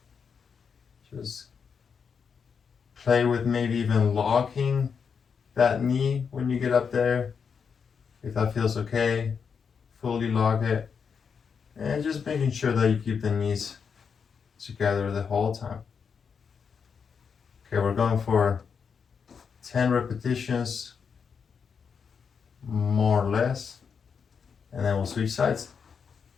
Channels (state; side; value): quieter; right; 6.3 dB